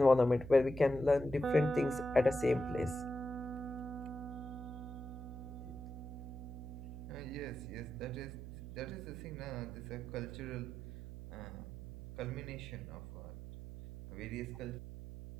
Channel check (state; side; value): noise; right; hum, 10 dB below the sound